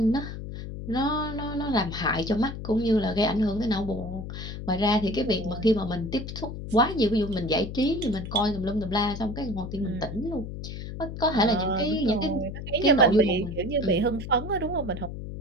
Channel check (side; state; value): left; noise; hum, 8 dB below the sound